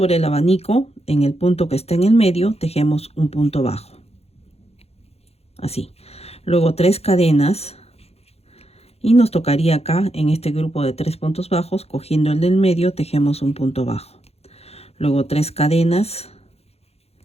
el abanico en el punto que está en el medio tejemos un punto bajo, así. Luego 3 cadenas y nos tocaría acá en este grupo de 3 puntos bajos, cogiendo el del medio tejemos un punto bajo, luego 3 cadenas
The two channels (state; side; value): late; right; 0.30 ms